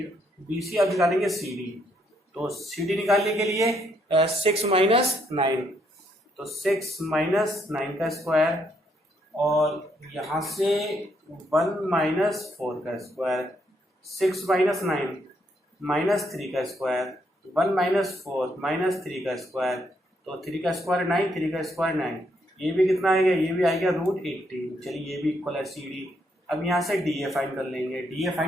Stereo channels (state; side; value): normal; both; correlation 0.74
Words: B C अब निकालेंगे सी डी। तो सी डी निकालने के लिए 6 - 9, तो 6 - 9 का स्क्वायर, और यहां से 1 - 4 का स्क्वायर, 6 - 9 - 3 का स्क्वायर, 1 - 4 - 3 का स्क्वायर, तो 3 का स्क्वायर 9, 3 का स्क्वायर 9, ये भी कितना आएगा, ये भी आएगा √18। चलिए ये भी इक्वल है सी डी। अब यहाँ से डी ए फाइंड कर लेंगे। डी ए